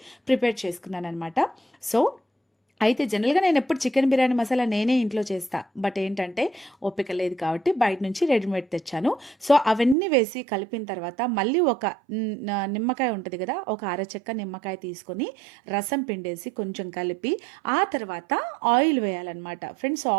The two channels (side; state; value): left; drops out; at 10.0 s